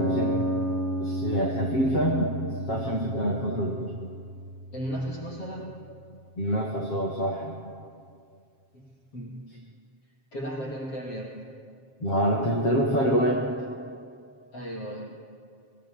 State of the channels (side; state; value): right; late; 7.5 ms